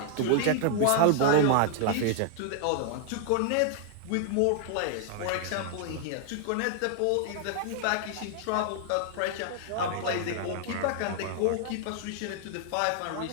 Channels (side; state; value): both; different; correlation 0.00